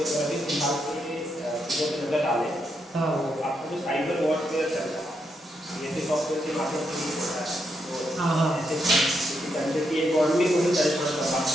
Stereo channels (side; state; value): both; normal; correlation 0.80